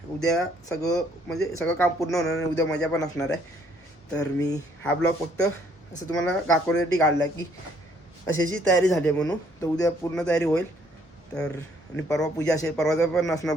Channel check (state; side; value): normal; both; correlation 0.65